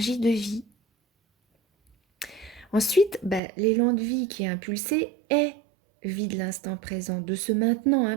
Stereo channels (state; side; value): drops out; left; at 3.4 s